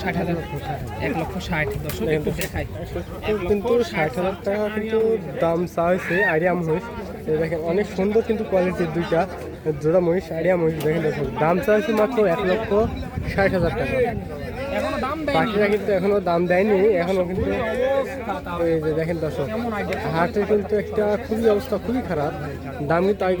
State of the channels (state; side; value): identical; both; correlation 1.00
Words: 1,60,000 দর্শক একটু দেখাই। কিন্তু 60,000 টাকা কিন্তু দাম চা হয়েছে আইডিয়া মহিষ। দেখেন অনেক সুন্দর কিন্তু কোয়ালিটির দুইটা জোড়া মহিষ, আইডিয়া মহিষ। দেখেন দর্শক দাম চা হয়েছে মাত্র 1,60,000 টাকা। বাকিরা কিন্তু এখনো দাম দেয়নি, এখনো কিন্তু এই যে দেখেন দর্শক হাটে কিন্তু একটা খুবই অবস্থা খুবই খারাপ। দাম কিন্তু